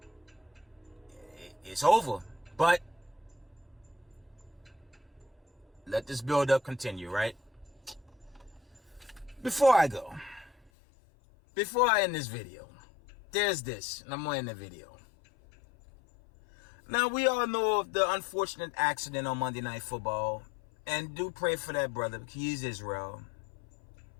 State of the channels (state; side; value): drops out; right; at 10.7 s